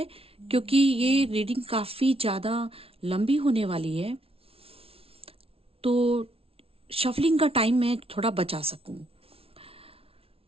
क्योंकि ये रीडिंग काफी ज्यादा लंबी होने वाली है, तो शफलिंग का टाइम मैं थोड़ा बचा सकूं।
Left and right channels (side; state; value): left; late; 0.27 ms